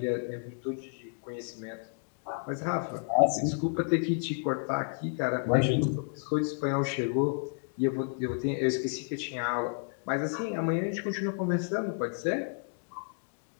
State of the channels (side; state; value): right; silent; 57 dB below the other